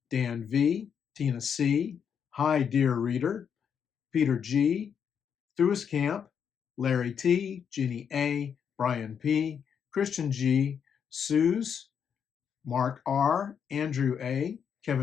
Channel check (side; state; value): right; quieter; 7.5 dB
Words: Dan V, Tina C, Hi Dear Reader, Peter G, Thuis Camp, Larry T, Jenny A, Brian P, Christian G, Suze, Mark R, Andrew A,